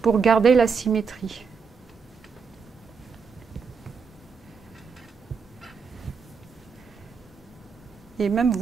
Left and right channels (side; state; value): left; quieter; 5.6 dB